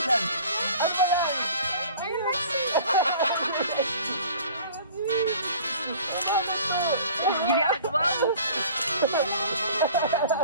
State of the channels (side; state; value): both; inverted; correlation -0.47